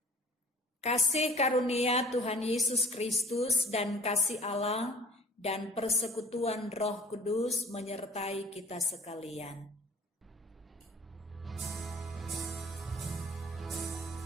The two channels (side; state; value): both; normal; correlation 0.49